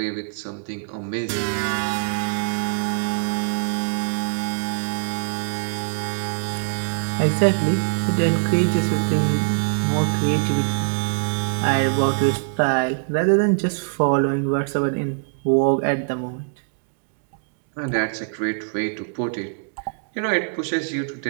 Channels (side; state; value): left; silent; digital silence